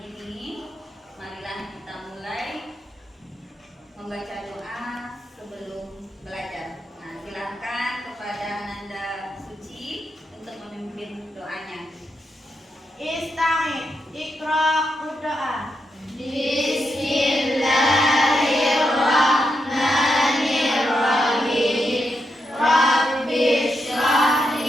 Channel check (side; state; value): both; normal; correlation 0.84